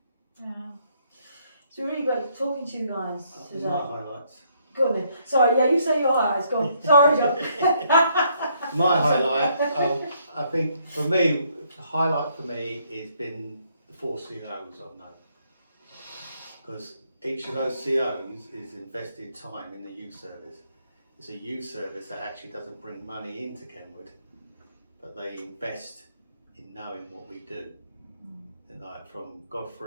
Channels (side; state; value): both; inverted; correlation -0.70